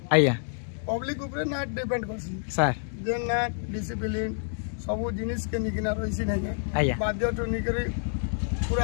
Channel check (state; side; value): silent; right; digital silence